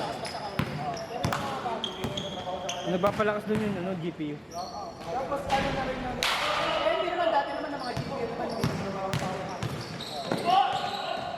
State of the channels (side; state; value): both; identical; correlation 1.00